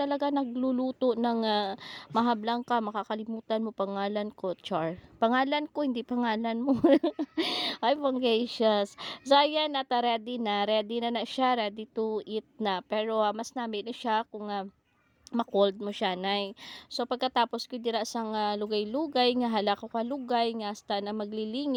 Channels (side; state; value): both; identical; correlation 1.00